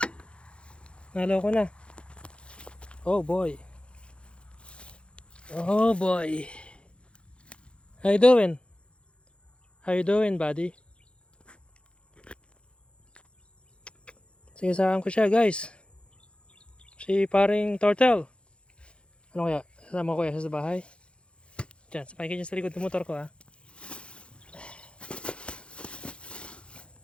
Nalo ko na. Oh boy. Oh boy. How you doing? How you doing, buddy? Sagasaan ko siya, guys. Si paring turtle. Ano kaya? Sasama ko kaya sa bahay? Diyan, sapay ka dyan sa likod ng motor ko, ha.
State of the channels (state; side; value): late; right; 0.057 ms